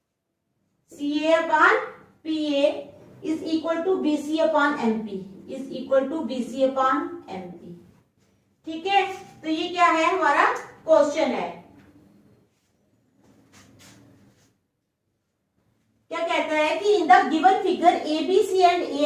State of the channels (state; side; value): identical; both; correlation 1.00